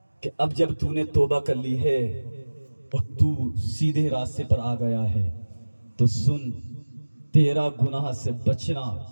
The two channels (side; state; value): both; inverted; correlation -1.00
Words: کہ اب جب تو نے توبہ کر لی ہے اور تو سیدھے راستے پر آ گیا ہے تو سن, تیرا گناہ سے بچنا,